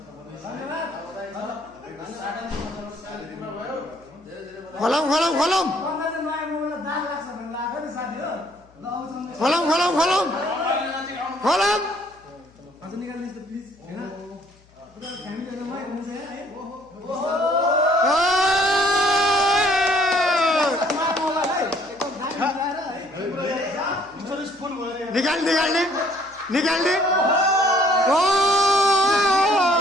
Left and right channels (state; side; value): noise; left; hum, 30 dB below the sound